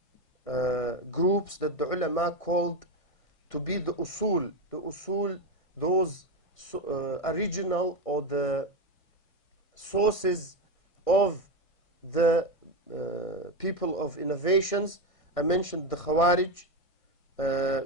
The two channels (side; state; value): right; late; 1.6 ms